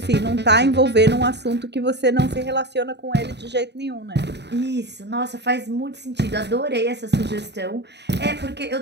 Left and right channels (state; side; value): late; left; 0.50 ms